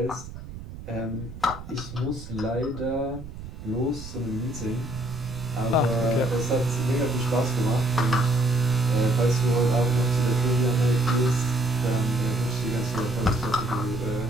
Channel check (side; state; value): right; noise; rumble, 12 dB below the sound